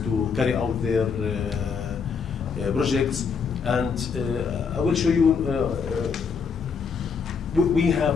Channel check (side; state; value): right; quieter; 5.8 dB